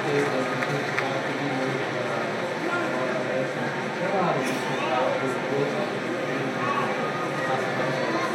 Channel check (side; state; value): both; identical; correlation 1.00